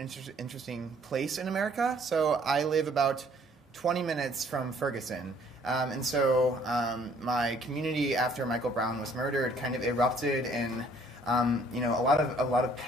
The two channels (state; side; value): normal; both; correlation 0.60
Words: interesting place in America. So I live about 20 minutes from Ferguson. And so my community after Michael Brown was murdered kind of erupted in a lot of